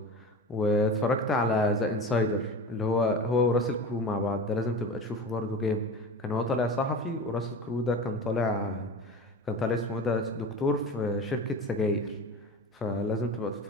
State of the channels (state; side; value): normal; both; correlation 0.31